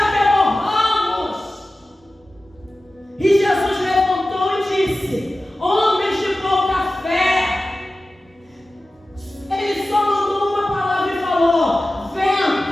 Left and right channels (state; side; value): normal; both; correlation 0.95